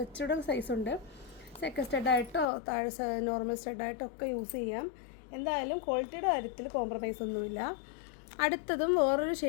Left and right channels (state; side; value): drops out; right; at 2.5 s